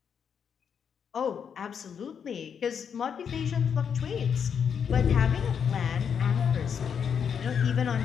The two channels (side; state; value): right; quieter; 7.3 dB